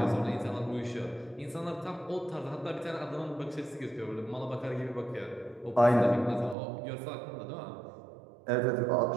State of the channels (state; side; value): drops out; left; at 6.6 s